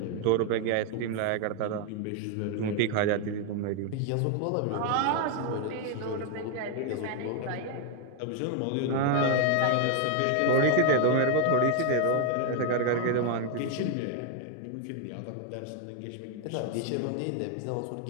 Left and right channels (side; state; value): both; different; correlation 0.00